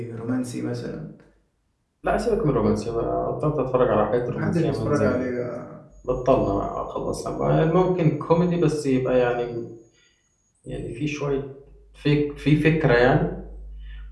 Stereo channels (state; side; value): identical; both; correlation 1.00